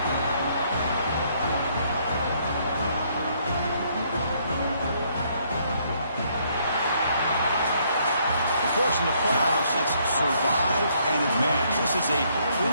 Of course, in the playoffs, it's survive and advance. This is a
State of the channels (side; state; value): both; inverted; correlation -0.69